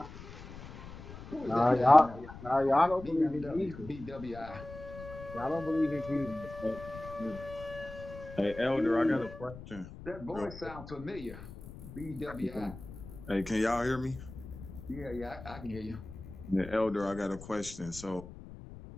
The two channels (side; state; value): left; noise; rumble, 14 dB below the sound